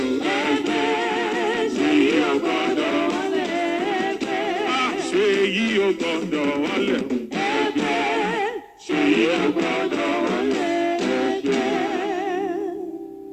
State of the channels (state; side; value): identical; both; correlation 1.00